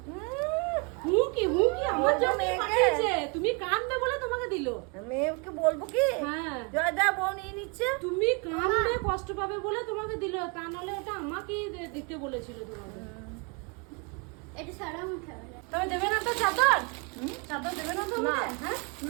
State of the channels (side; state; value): left; quieter; 32.7 dB